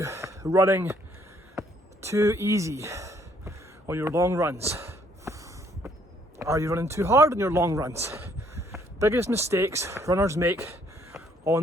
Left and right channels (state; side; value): normal; both; correlation 0.65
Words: running too easy on your long runs? Are you running too hard on your long runs? Biggest mistakes runners make